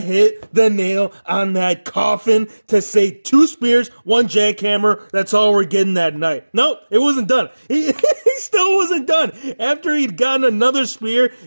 hit the nail on that coffin to say 2 spears, 1 jackhammer. That's all we're getting that night. Nope, it wasn't done. He still wasn't done. After he'd gotten another spear,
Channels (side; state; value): both; inverted; correlation -1.00